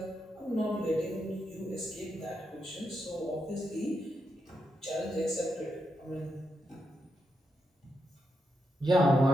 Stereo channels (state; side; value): normal; both; correlation 0.84